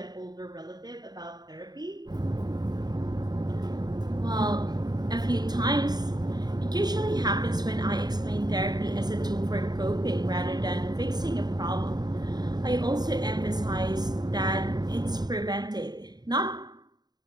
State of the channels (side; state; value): left; late; 0.20 ms